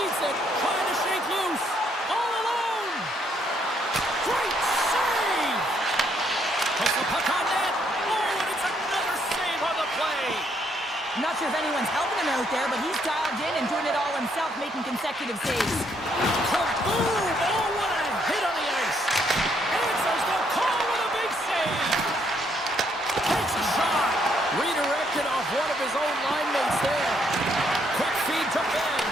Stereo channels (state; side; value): normal; both; correlation 0.71